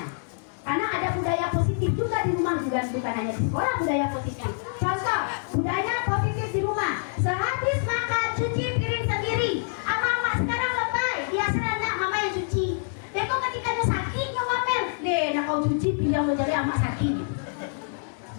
Karena ada budaya positif juga di rumah, juga bukan hanya di sekolah budaya positifnya. Contoh, budaya positif di rumah. Sehabis makan cuci piring sendiri. Mama sekarang lebay, dia serana mama yang cuci. Beko ketika dia sakit ngomel, deh, nak kau cuci piring lo jadi amak sakit.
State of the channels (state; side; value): silent; right; digital silence